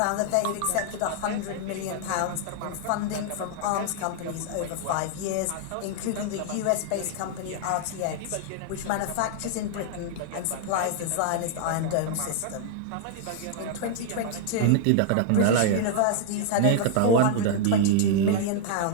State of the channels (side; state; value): both; different; correlation 0.00